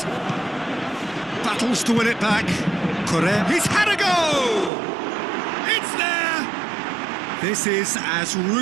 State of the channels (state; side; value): drops out; left; at 4.7 s